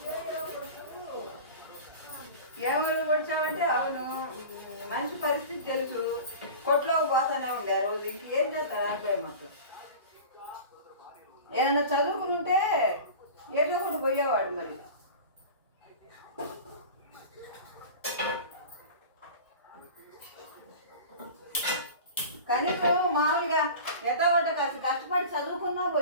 ఎవరు వచ్చావంటే అవును, మంచి పరిస్థితి తెలుసు, కొట్లోకి పోతానే ఉండే ఆ రోజు. ఇంకేం చేస్తారు అనుకోండి. మాకు ఏదన్నా చదువుకుని ఉంటే ఏదో ఒకటి పోయేవాడు. మరి కనీసం మామూలుగా ఎట్టగొట్ట కాస్త కష్టపడి చదువుకున్నా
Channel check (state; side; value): inverted; both; correlation -0.36